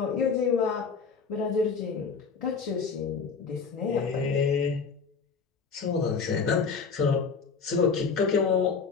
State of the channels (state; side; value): quieter; right; 5.3 dB